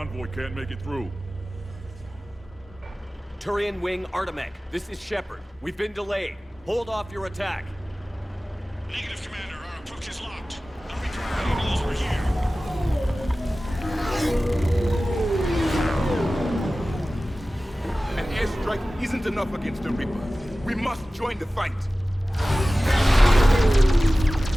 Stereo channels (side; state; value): both; normal; correlation 0.96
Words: can't make it through. Turian Wing Artemec, this is Shepard. We've been delayed. Hold off your attack. Negative, Commander. Our approach is locked. The Reaper already knows we're here. An airstrike isn't enough against the Reaper. We must join the fight.